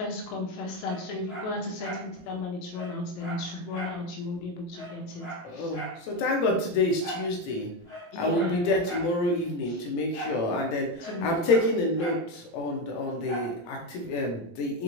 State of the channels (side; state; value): right; late; 18 ms